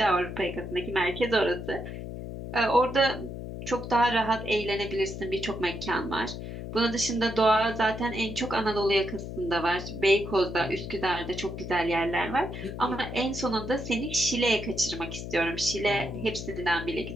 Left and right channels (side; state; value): left; noise; hum, 8 dB below the sound